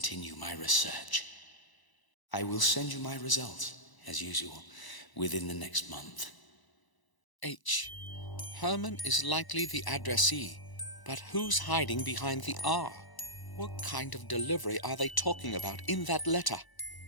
my research. I will send you my results, as usual, within the next month. H. Herman is likely the addressee, but who's hiding behind the R? What kind of delivery are they talking about in that letter?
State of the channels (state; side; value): late; right; 1.0 ms